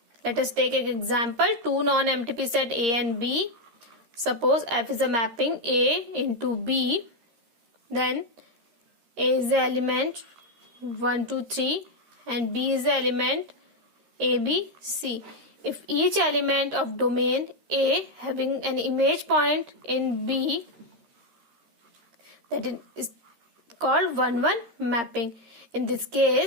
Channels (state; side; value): late; left; 13 ms